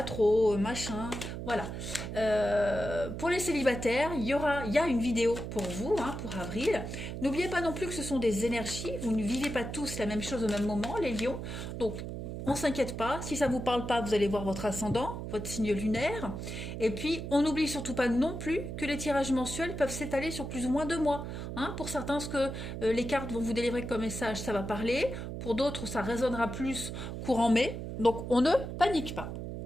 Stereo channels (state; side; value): noise; right; hum, 6 dB below the sound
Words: trop, machin, voilà. Pour les célibataires, il y a une vidéo pour vous, pour avril. N'oubliez pas non plus que ce sont des énergies, vous ne vivez pas tous la même chose au même moment, les lions, donc on s'inquiète pas, si ça vous parle pas, vous allez voir votre ascendant, votre signe lunaire. Et puis, on n'oublie surtout pas non plus que les tirages mensuels peuvent s'étaler sur plus ou moins 2 mois. Pour certains, ce que les cartes vont vous délivrer comme message, ça va parler. Pour d'autres, ça résonnera plus courant mai. Donc, on ne panique pas.